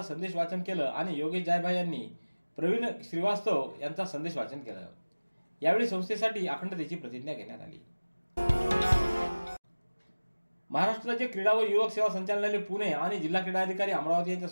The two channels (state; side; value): inverted; both; correlation -1.00